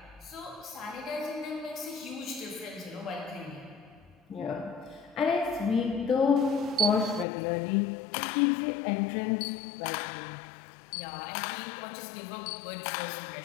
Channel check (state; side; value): drops out; right; at 7.2 s